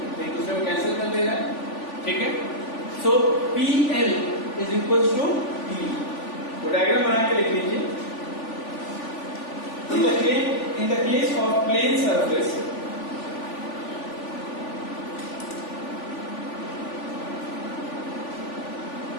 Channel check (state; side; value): late; right; 3.5 ms